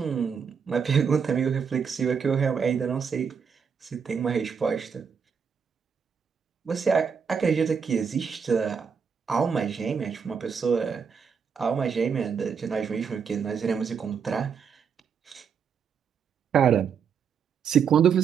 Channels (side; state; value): left; quieter; 6.6 dB